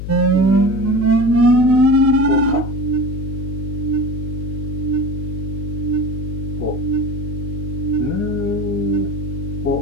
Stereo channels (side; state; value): left; noise; hum, 6 dB below the sound